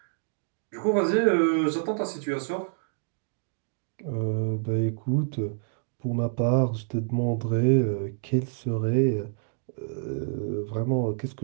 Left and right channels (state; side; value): silent; left; digital silence